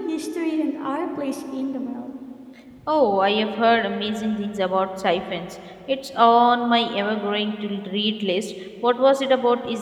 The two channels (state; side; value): identical; both; correlation 1.00